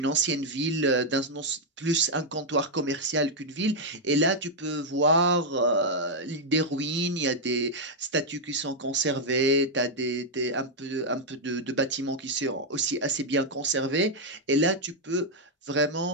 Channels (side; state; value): both; normal; correlation -0.01